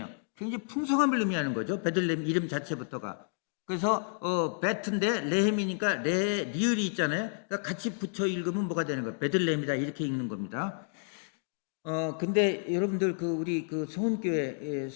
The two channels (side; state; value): right; silent; digital silence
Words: 굉장히 풍성함을 의미하는 거죠. 베들레헴 이름 자체부터가. 그래서 베트인데 레헴이니까 리을이 있잖아요. 그러니까 같이 붙여 읽으면 뭐가 되는 거예요? 베들레헴이다 이렇게 읽는 겁니다. 근데 여러분들 우리 성훈교회